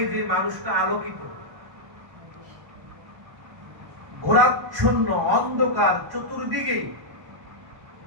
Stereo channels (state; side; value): late; left; 1.1 ms